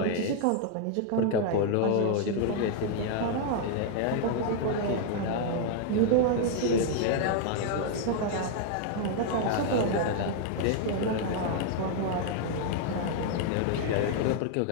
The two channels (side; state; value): both; different; correlation 0.00